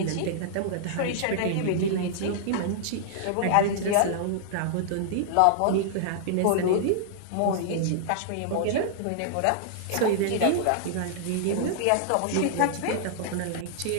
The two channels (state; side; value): different; both; correlation -0.01